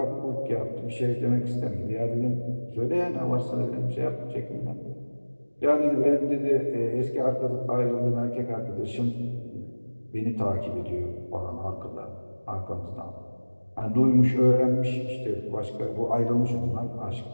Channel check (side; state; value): both; inverted; correlation -1.00